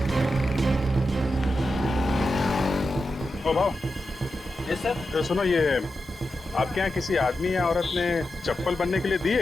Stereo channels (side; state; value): both; normal; correlation 0.89